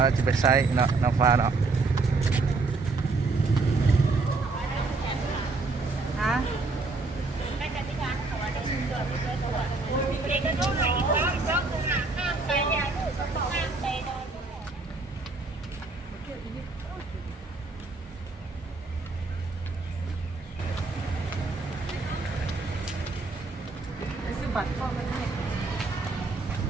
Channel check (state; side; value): quieter; left; 3.7 dB